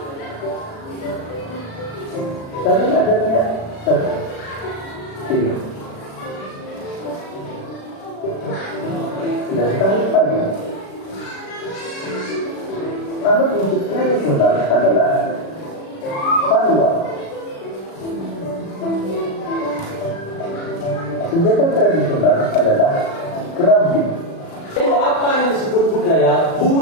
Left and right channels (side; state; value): right; late; 36 ms